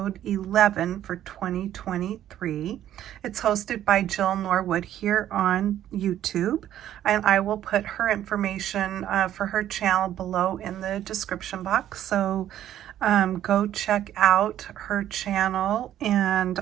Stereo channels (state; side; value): quieter; left; 11.7 dB